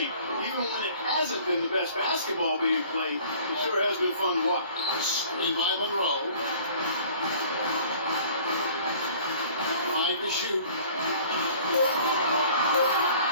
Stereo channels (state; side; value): inverted; both; correlation -0.50